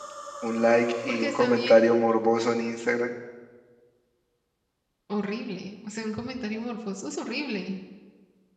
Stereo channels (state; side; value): identical; both; correlation 1.00